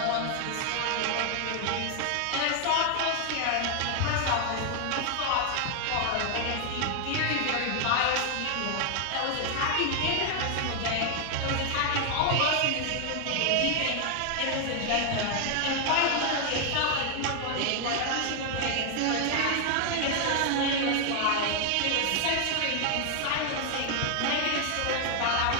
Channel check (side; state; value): both; different; correlation 0.00